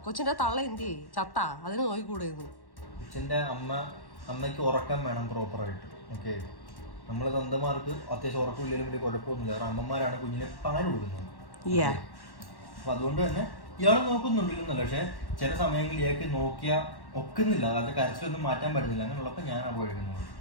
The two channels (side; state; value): right; late; 1.1 ms